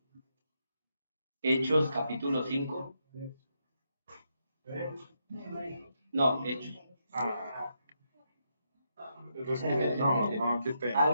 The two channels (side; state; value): both; inverted; correlation -0.81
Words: Hechos, capítulo 5. No, Hechos. No, qué pena.